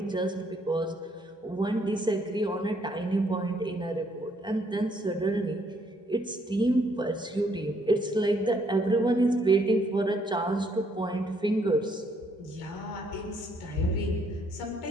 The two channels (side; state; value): both; normal; correlation 0.69